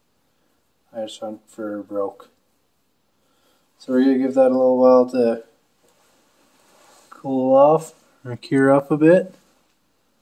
I just went for broke. So we're going to give that a little while to cool off or cure up a bit.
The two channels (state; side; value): identical; both; correlation 1.00